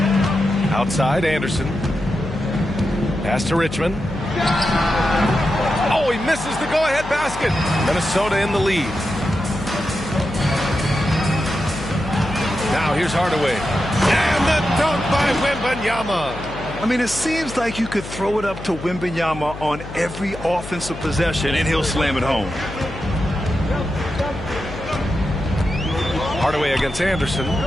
Outside Anderson. Pass to Richmond. Oh, he misses the go-ahead basket. Minnesota in the lead. Now here's Hardaway. And the dunk by Wembanyama. I mean, it seems like you could throw it up to Wembanyama on every offensive possession, and he'll slam it home. Hardaway against Anderson.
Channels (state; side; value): noise; left; hum, 12 dB below the sound